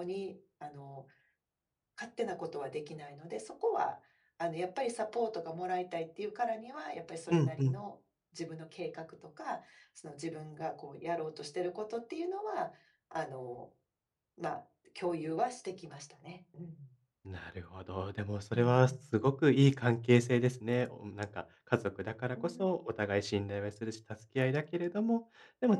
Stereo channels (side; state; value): both; identical; correlation 1.00